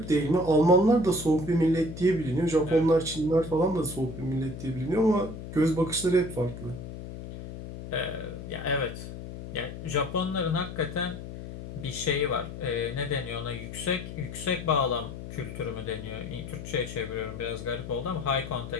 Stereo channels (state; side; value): noise; left; hum, 10 dB below the sound